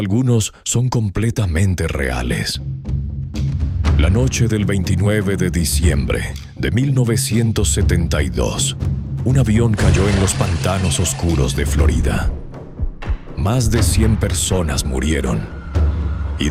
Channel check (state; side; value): identical; both; correlation 1.00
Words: algunos son completamente reales. La noche del 29 de diciembre de 1972, un avión cayó en los pantanos oscuros de Florida. Más de 100 personas murieron. Y